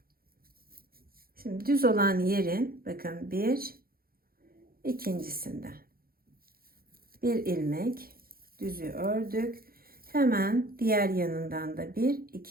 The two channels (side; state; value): left; late; 0.43 ms